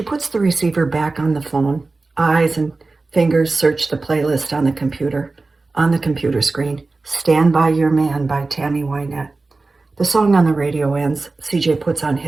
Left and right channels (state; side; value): quieter; left; 3.6 dB